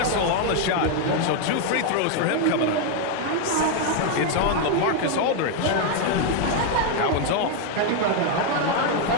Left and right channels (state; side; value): different; both; correlation 0.01